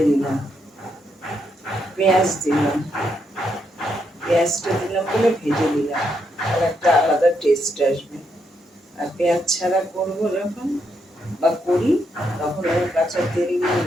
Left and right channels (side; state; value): both; normal; correlation 0.79